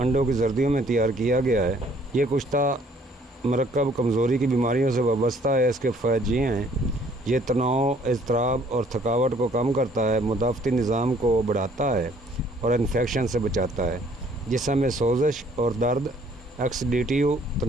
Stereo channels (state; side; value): normal; both; correlation 0.60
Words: की जर्दियों में तैयार किया गया है। ये कुश्ता मरकब कमज़ोरी की बीमारियों से वाबस्ता है। इसके फ़ायदे ये हैं: ये तनाव, इज़्तिराब और थकावट को कम करता है, मुदाफ़ती निज़ाम को बढ़ाता है और इन्फेक्शन से बचाता है। जिस्म में सोजिश और दर्द, एक्सीडेटिव